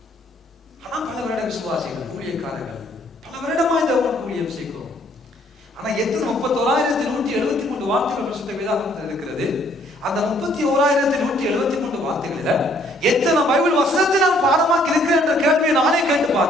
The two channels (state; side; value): normal; both; correlation 0.64